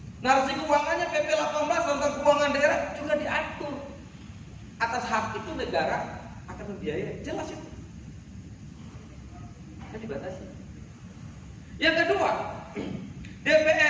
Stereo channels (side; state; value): both; identical; correlation 1.00